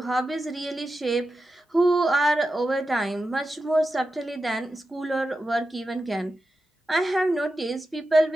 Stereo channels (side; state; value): both; normal; correlation 0.91